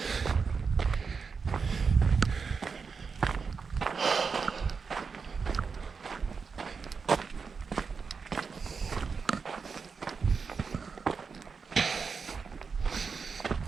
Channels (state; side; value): quieter; left; 5.3 dB